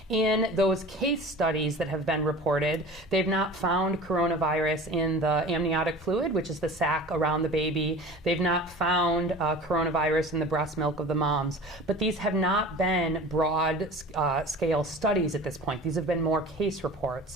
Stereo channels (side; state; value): both; normal; correlation 0.38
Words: In those case studies that have been reported, they've not found coronavirus in the amniotic fluid, which is the sac around the baby. They've not found coronavirus in the breast milk of the mom. But these have not been broad scale studies at this point. These have been more case